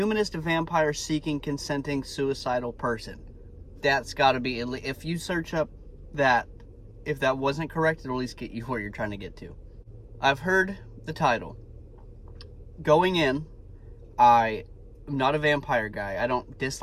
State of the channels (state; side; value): identical; both; correlation 1.00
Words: consenting suicidal person. That's got to be, if you search up that, if that wasn't correct, it'll at least get you where you're trying to get to. I've heard the title. Going in, I am not a vampire guy. I don't